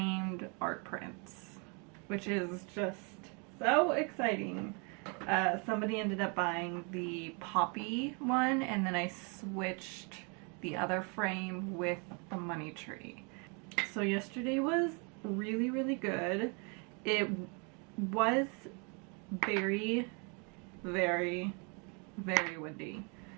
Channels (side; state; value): left; quieter; 34.8 dB